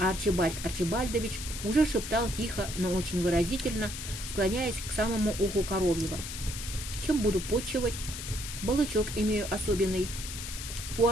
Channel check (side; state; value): left; noise; hiss, 8 dB below the sound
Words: Арчибальд Арчибальдович уже шептал тихо, но очень выразительно, склоняясь к самому уху Коровьева. «Чем буду почивать? Балычок имею особенный. У